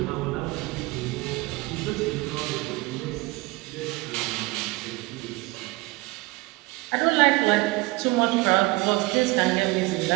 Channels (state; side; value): quieter; left; 23.1 dB